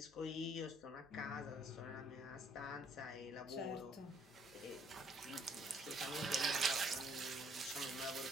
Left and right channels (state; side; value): noise; left; hum, 28 dB below the sound